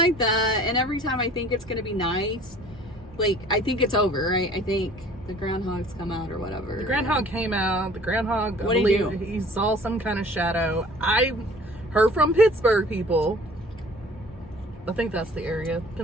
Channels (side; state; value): both; normal; correlation 0.50